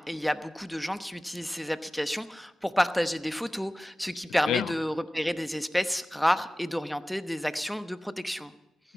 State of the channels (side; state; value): both; normal; correlation 0.96